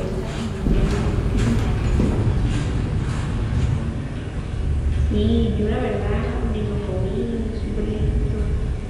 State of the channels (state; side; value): identical; both; correlation 1.00